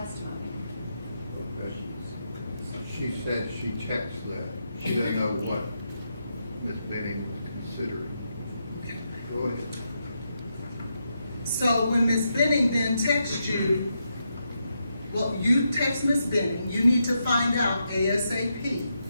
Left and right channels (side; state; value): both; inverted; correlation -0.83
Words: Okay. She said she checks that. She doesn't know what Ms. Benning was considering. Go ahead. So when Ms. Benning then texts you, well, you text Ms. Benning, you need to find out ASAP.